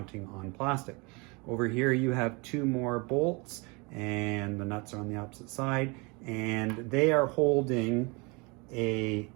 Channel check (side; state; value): left; quieter; 28.5 dB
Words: on plastic. Over here you have two more bolts, and the nuts are on the opposite side, and they are holding a